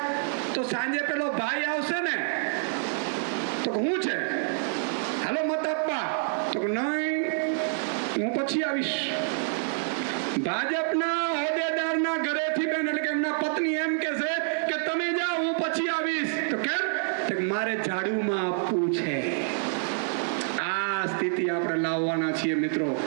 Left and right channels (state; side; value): silent; left; 60 dB below the other